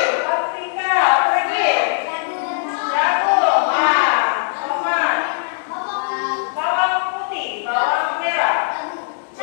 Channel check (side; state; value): right; silent; digital silence